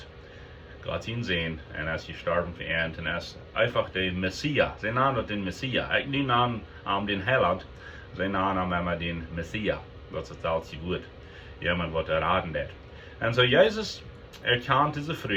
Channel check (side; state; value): both; identical; correlation 1.00